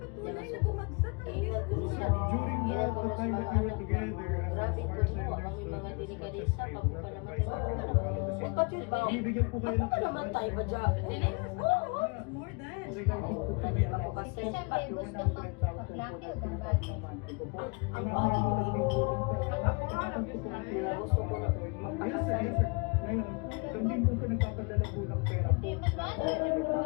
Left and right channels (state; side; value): quieter; right; 31.5 dB